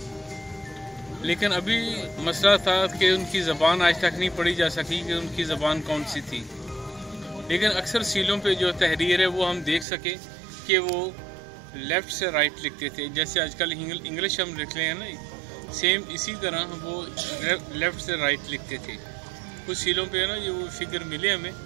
لیکن ابھی مسئلہ تھا کہ ان کی زبان آج تک نہیں پڑھی جا سکی کہ ان کی زبان کون سی تھی. لیکن اکثر سیلوں پہ جو تحریر ہے وہ ہم دیکھ سکے کہ وہ لیفٹ سے رائٹ لکھتے تھے. جیسے آج کل انگلش ہم لکھ رہے ہیں نا، سیم اسی طرح وہ لیفٹ سے رائٹ لکھتے تھے. کچھ سیلوں پہ ہے نا یہ وہ فگر ملے ہمیں،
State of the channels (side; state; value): left; drops out; at 9.9 s